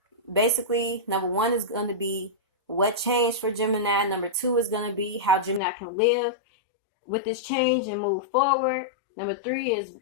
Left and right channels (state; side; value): drops out; right; at 5.6 s